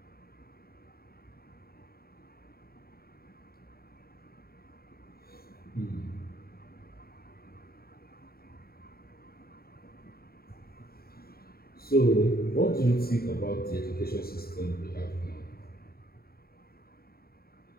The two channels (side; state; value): right; late; 0.44 ms